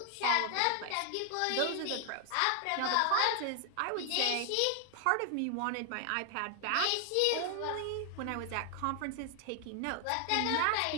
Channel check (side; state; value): both; different; correlation 0.00